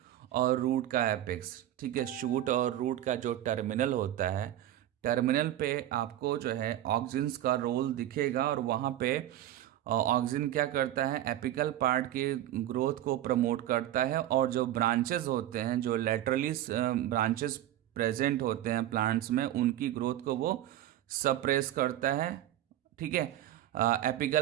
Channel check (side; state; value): left; quieter; 12.9 dB